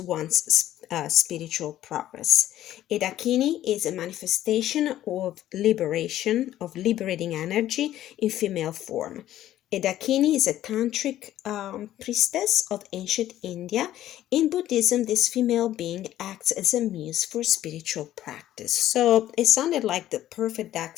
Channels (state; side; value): quieter; right; 13.0 dB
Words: spiritual progress. A Dakini is a manifestation of liberation, of liberating energy in female form. A Dakini is a tantric priestess of ancient India. In Buddhism, this female being acts as a muse for spiritual practice. So it sounded like the perfect deck